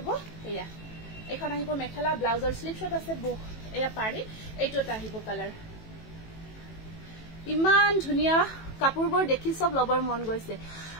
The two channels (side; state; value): right; late; 18 ms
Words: এয়া এখন আহিব মেখেলা ব্লাউজৰ স্লিপ শট আছে এয়া পাৰি এইটোটা আহিব কালাৰ ইমান ধুনিয়া কাপোৰবোৰ দেখি সব লবৰ মন গৈছে